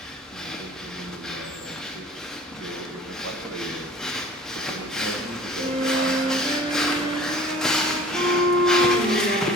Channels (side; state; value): both; normal; correlation 0.46